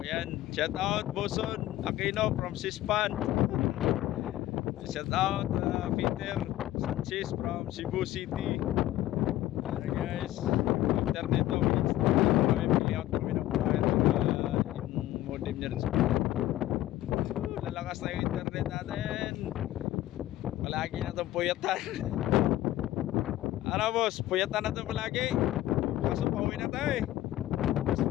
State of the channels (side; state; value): right; quieter; 14.7 dB